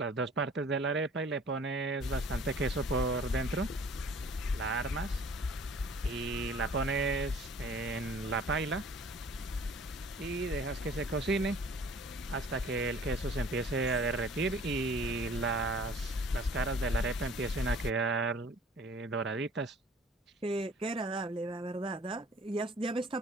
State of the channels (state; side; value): normal; both; correlation 0.51